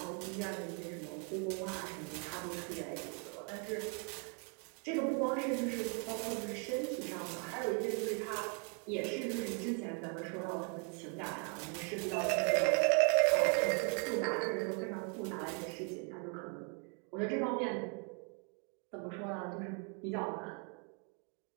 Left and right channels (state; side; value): quieter; left; 37.5 dB